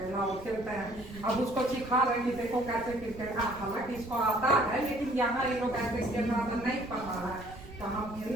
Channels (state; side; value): noise; right; rumble, 17 dB below the sound